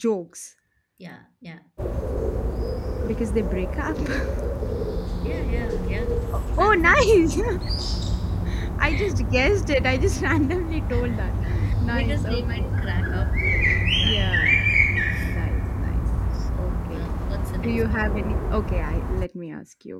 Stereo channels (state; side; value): identical; both; correlation 1.00